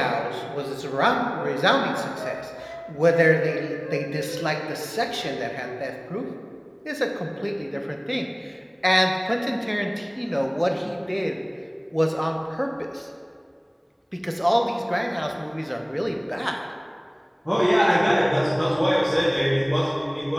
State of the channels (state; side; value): identical; both; correlation 1.00